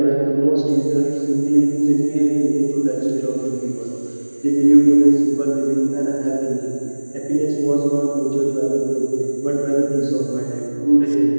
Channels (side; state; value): both; inverted; correlation -1.00